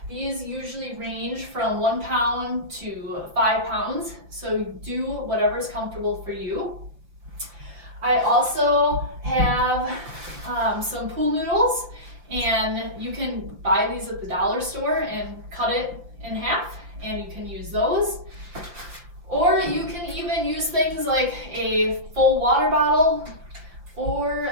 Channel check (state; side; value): late; left; 5.8 ms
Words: These usually range from 1 pound to 5 pounds, so do whatever's comfortable for you. I also have some pool noodles, and you can buy these at the dollar store and cut it in half, and you can use those. Or you can even use things like a full water bottle or